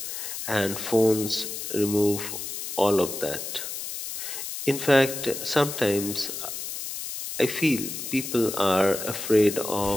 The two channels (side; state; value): left; noise; hiss, 7 dB below the sound